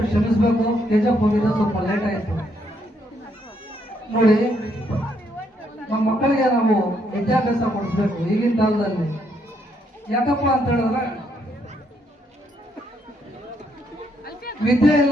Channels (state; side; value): normal; both; correlation 0.74